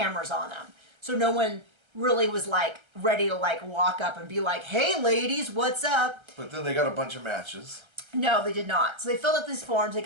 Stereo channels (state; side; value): late; left; 1.3 ms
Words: on them, so no one really was like ready to like walk up and be like, "Hey, ladies, what's up?" But then they got a bunch of matches. No, they did not. So they filled out these forms. They